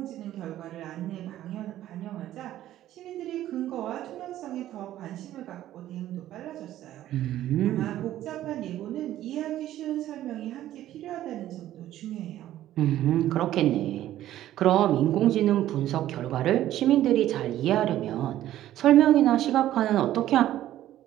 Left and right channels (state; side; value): quieter; left; 13.2 dB